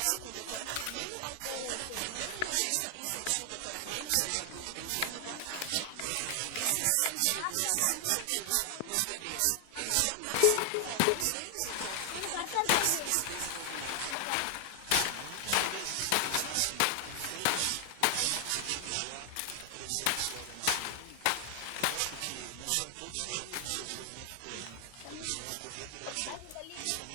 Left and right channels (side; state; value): both; different; correlation 0.00